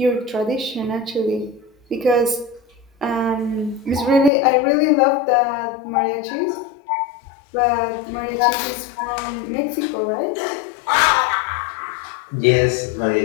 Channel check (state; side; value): drops out; right; at 4.3 s